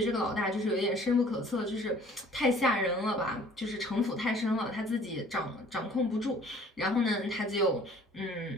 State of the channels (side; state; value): both; normal; correlation 0.53